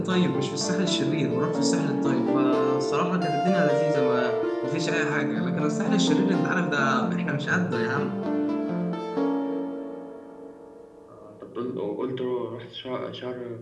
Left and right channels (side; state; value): both; identical; correlation 1.00